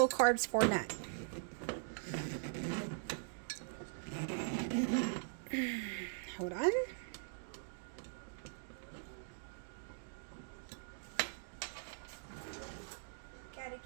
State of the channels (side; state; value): left; silent; digital silence